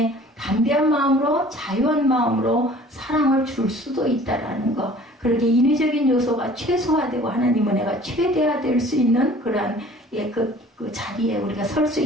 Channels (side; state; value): both; normal; correlation 0.49